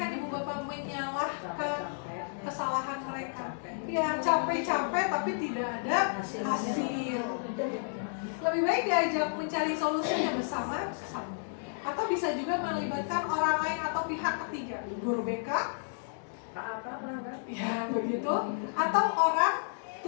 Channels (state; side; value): silent; right; digital silence